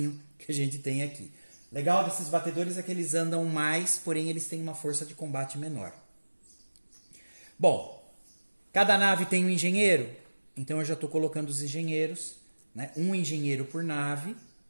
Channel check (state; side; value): inverted; both; correlation -1.00